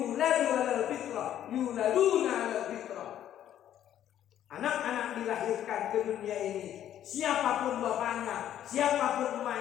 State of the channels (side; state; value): right; quieter; 11.1 dB